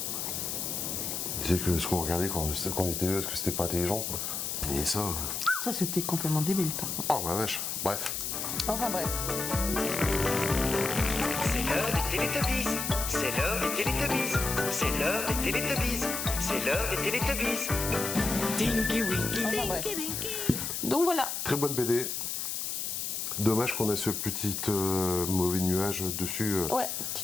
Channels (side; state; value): left; noise; hiss, 3 dB below the sound